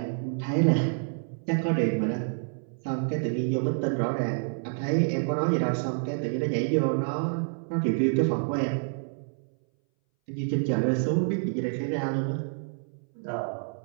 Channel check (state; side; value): silent; left; 59 dB below the other